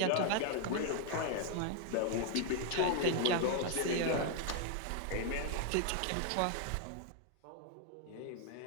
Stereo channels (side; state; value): both; different; correlation 0.00